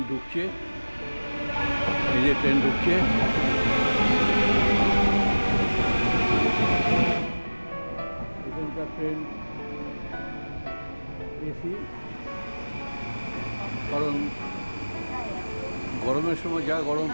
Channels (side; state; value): both; inverted; correlation -1.00